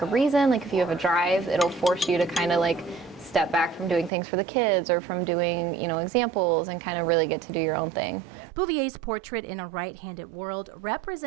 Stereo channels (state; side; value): drops out; left; at 4.1 s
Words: a reason, like if you have a drive, it'll force you to kind of like step back from doing things for the kids or from doing, examples, and kind of really get to do your own thing. Bouvier's portrait In a Right-Handed World